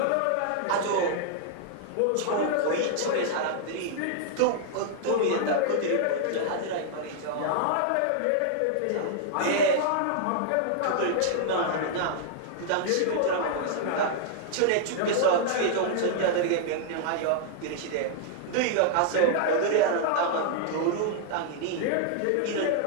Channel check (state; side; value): different; both; correlation -0.01